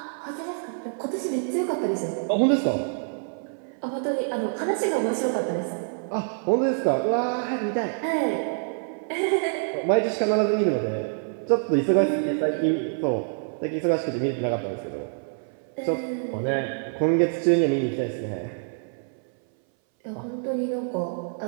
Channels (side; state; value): left; silent; 59 dB below the other